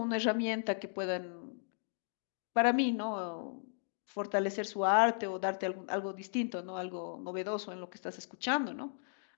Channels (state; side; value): silent; right; digital silence